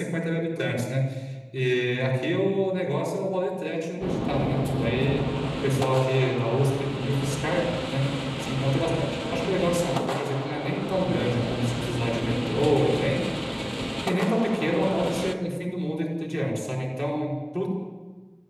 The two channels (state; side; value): identical; both; correlation 1.00